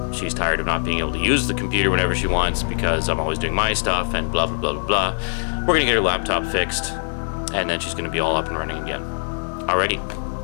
she's tired of not being able to use the computer whenever she wants because I'm always doing my stuff and blah, blah, blah, blah, blah. We're going to get her laptop fixed, and then she's going to be all up and running again.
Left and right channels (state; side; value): silent; right; 64 dB below the other